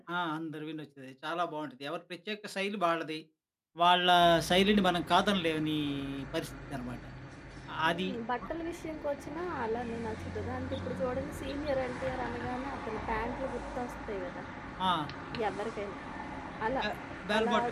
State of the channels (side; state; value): both; identical; correlation 1.00